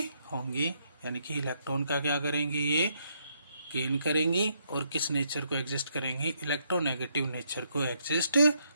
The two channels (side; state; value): both; inverted; correlation -0.73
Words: होंगी, यानी कि इलेक्ट्रॉन का क्या करेंगी, ये गेन करेंगी और किस नेचर को एग्जिस्ट करेंगी, इलेक्ट्रोनेगेटिव नेचर को एग्जिस्ट